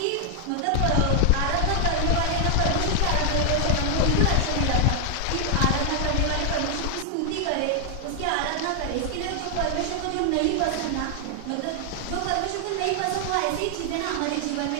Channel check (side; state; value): both; different; correlation 0.00